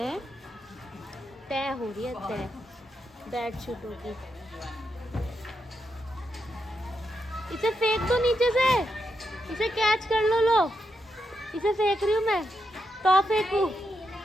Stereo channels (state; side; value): normal; both; correlation 0.84